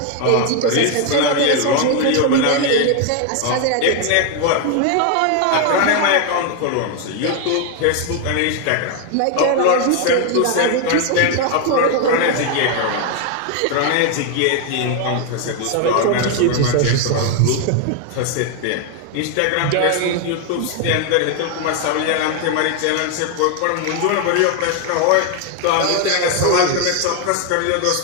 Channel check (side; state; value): both; different; correlation 0.01